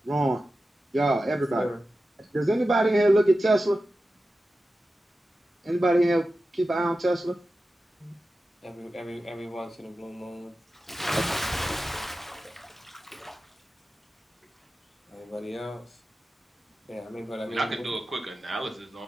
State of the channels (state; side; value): normal; both; correlation 0.93